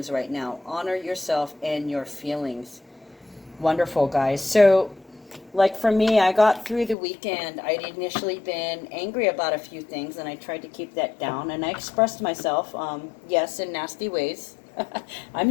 right now. Honor yourself and your feelings. Wonderful, guys. So, like for me, I got through the weekend. I'd initially been angry about a few things, and I tried to keep that down, and I expressed myself, yes, in nasty ways. I'm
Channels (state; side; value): drops out; right; at 7.0 s